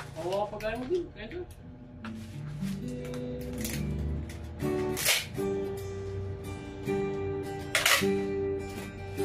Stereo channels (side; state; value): both; identical; correlation 1.00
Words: Oo, pagkain mo din. Kaya ito.